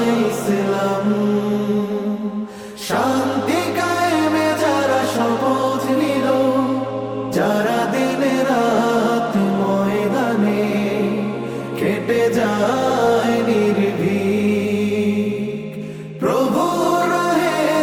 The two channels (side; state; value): both; identical; correlation 1.00